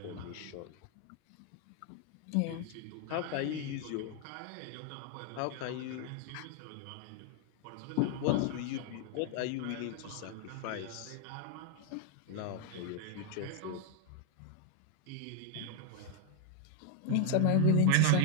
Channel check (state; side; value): different; both; correlation 0.00